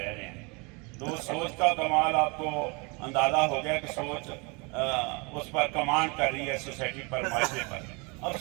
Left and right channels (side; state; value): left; quieter; 29.9 dB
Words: رہے ہیں۔ تو سوچ کا کمال آپ کو اندازہ ہو گیا کہ سوچ اس پر کمانڈ کر رہی ہے، سوسائٹی پر، معاشرے پر۔ اب